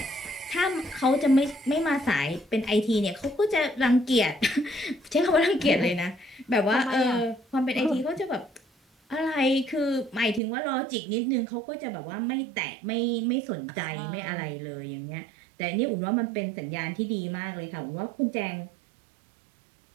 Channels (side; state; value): left; drops out; at 10.4 s